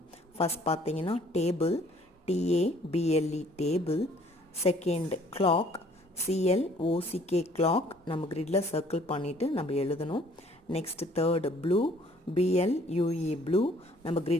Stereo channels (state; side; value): normal; both; correlation 0.58